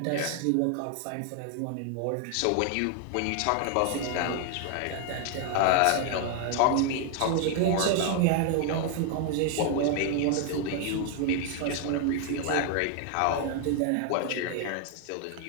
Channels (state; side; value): different; both; correlation 0.00